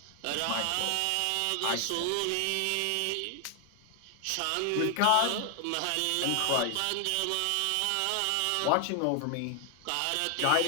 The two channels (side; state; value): both; different; correlation 0.00